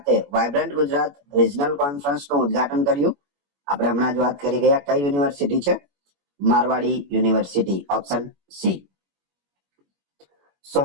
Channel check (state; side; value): late; left; 21 ms